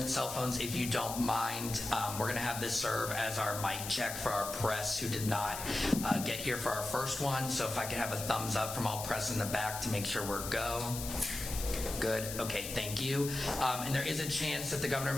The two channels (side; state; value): left; noise; hiss, 7 dB below the sound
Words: cell phones if you don't mind. We're going to have this serve as our mic check for our press who did not get here for our first one. So if I could have a thumbs up from all press in the back to make sure we're go. Good. Okay, thank you. And there is a chance that the governor